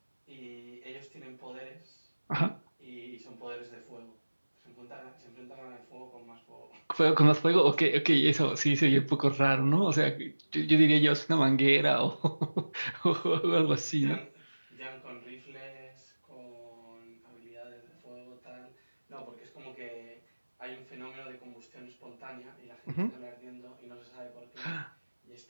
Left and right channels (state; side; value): inverted; both; correlation -1.00